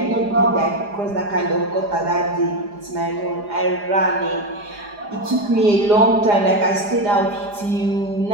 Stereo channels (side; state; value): left; late; 4.9 ms